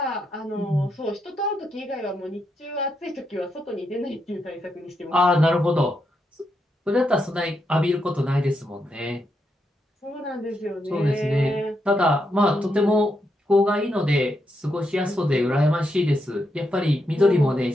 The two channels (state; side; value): normal; both; correlation 0.82